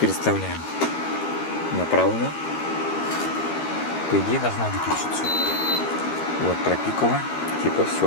на правую. По идее должна выключиться. Вот пропикала. Типа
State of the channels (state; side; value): late; right; 13 ms